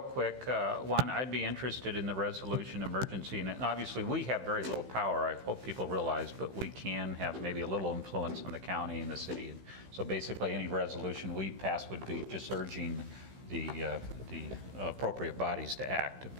quick, one, I'd be interested in the resolution emergency, and obviously we have very little power, I hope people realize, but we can have maybe a little influence on the county and the city. And so basically any resolution we pass would be just urging the appropriate bodies to act.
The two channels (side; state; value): left; late; 15 ms